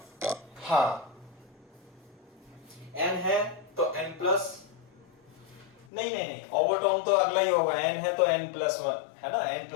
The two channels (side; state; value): right; drops out; at 5.9 s